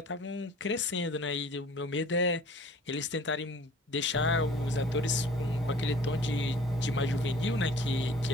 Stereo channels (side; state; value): both; normal; correlation 0.49